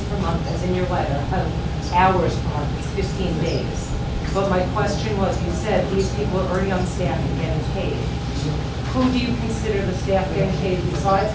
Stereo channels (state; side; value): identical; both; correlation 1.00